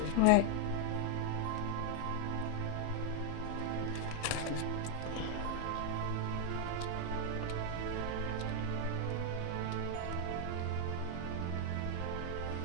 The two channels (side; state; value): both; different; correlation 0.00